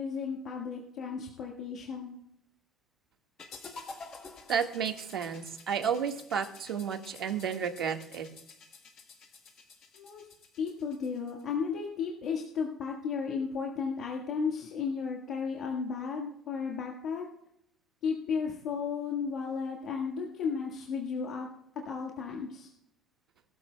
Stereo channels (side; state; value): both; normal; correlation 0.49